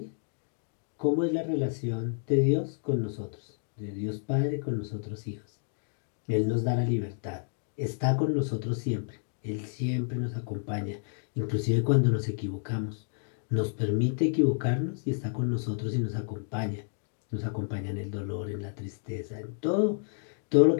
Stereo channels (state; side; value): silent; right; digital silence